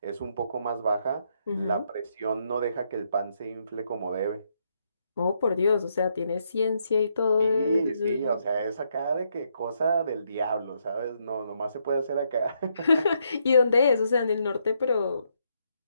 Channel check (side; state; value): both; inverted; correlation -0.76